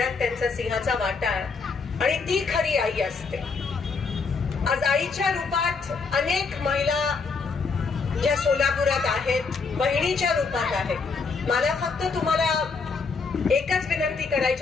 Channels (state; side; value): quieter; right; 4.7 dB